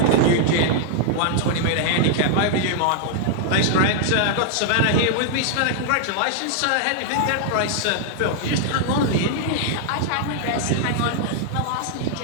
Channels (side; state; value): both; different; correlation -0.01